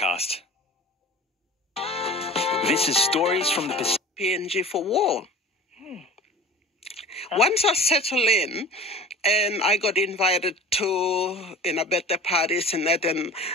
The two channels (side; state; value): both; normal; correlation 0.39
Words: This is Stories from the Pacific. PNG for war. Once I settled in, and I got invited to birthday parties and that, and